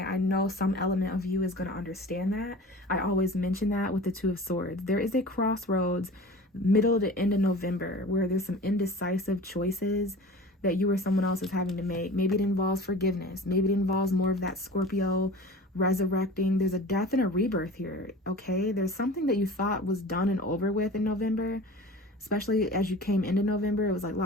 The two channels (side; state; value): both; normal; correlation 0.38